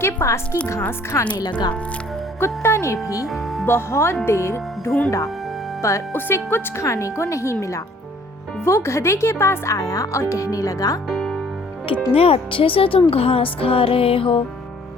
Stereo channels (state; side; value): normal; both; correlation 0.57